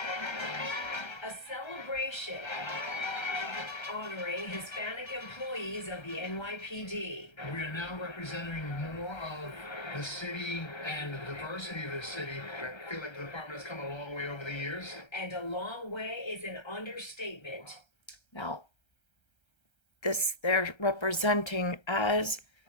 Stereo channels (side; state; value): right; late; 1.3 ms